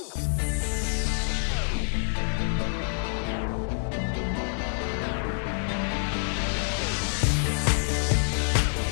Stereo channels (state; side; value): silent; right; 60 dB below the other